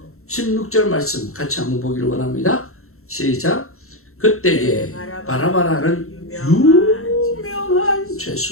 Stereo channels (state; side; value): late; right; 0.63 ms